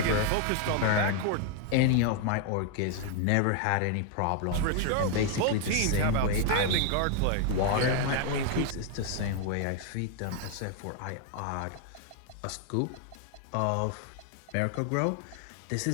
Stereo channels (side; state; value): both; different; correlation 0.00